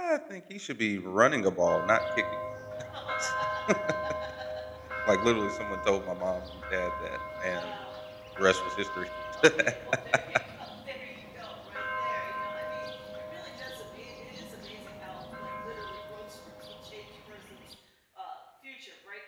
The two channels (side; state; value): both; identical; correlation 1.00